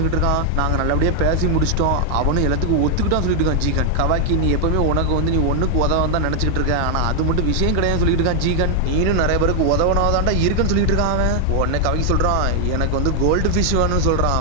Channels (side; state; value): both; different; correlation 0.00